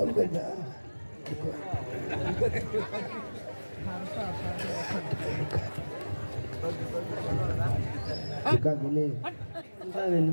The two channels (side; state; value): both; inverted; correlation -1.00